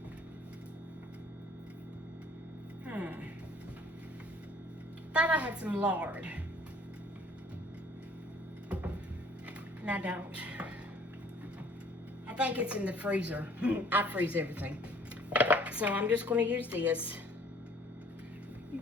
thought I had some lard. And I don't. I think it's in the freezer. I freeze everything. So I'm just going to use this.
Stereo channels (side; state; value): both; normal; correlation 0.55